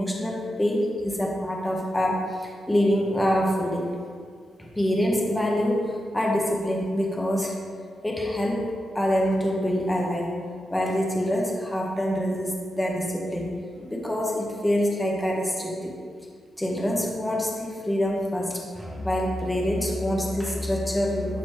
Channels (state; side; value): normal; both; correlation 0.89